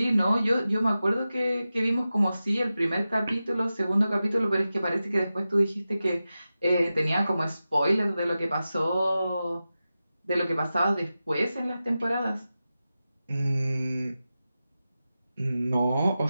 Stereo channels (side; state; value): both; inverted; correlation -0.93